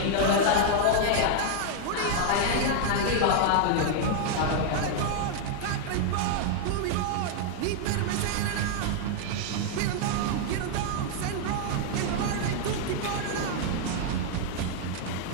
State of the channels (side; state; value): both; different; correlation 0.00